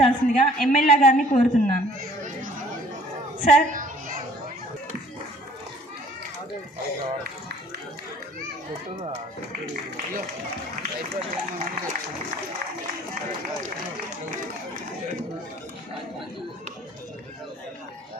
ఎమ్మెల్యే గారిని కోరుతున్నాను. సార్.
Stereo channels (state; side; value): normal; both; correlation 0.55